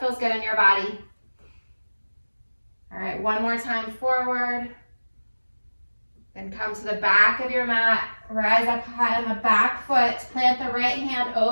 good in your body. All right, one more time forward. Then come to the back of your mat. Rise up high on the back foot. Plant the right hand,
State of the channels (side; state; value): both; inverted; correlation -1.00